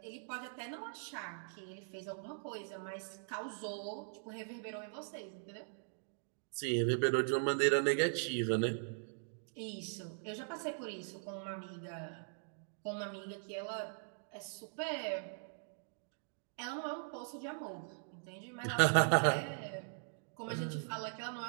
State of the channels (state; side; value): silent; left; digital silence